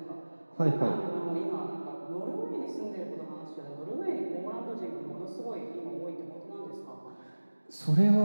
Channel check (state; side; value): inverted; both; correlation -1.00